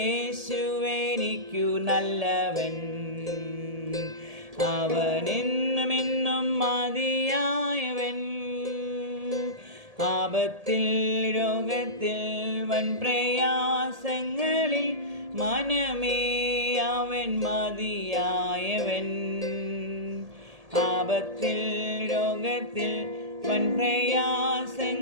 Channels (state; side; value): late; left; 1.8 ms